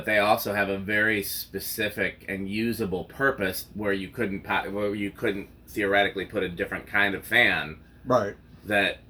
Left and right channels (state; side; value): identical; both; correlation 1.00